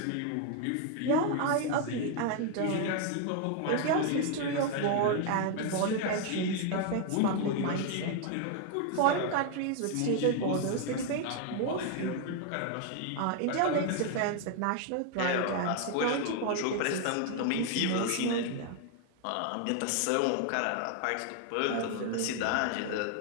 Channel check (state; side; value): different; both; correlation 0.01